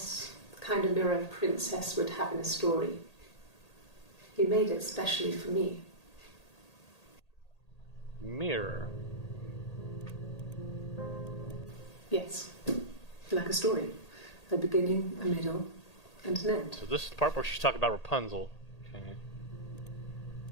the kind of mirror a princess would have in a story. He made it specially for me. Mirror. Yes, like a story. A beginning, a middle, and an end. So this is the part where she's talking about Rapunzel. Okay.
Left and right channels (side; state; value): right; late; 1.8 ms